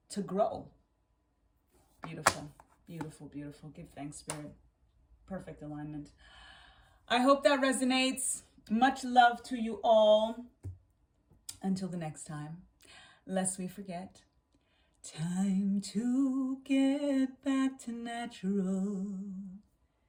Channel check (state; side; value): identical; both; correlation 1.00